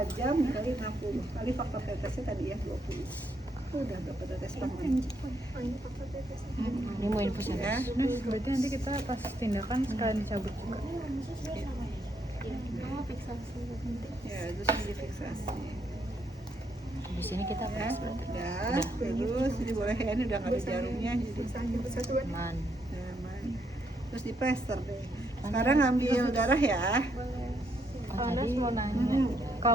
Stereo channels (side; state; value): both; normal; correlation 0.75